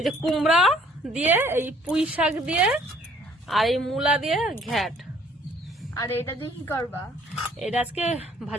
যে কুমড়া দিয়ে, এই পুঁই শাক দিয়ে, আর এই মূলা দিয়ে ঘ্যাট। আর এটা দিয়ে কি করবা? এটা আজকে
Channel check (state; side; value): normal; both; correlation 0.59